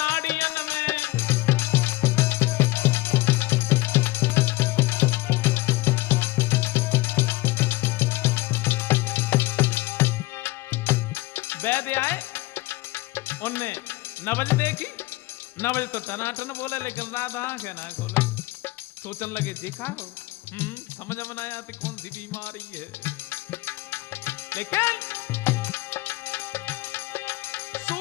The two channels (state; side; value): quieter; right; 19.9 dB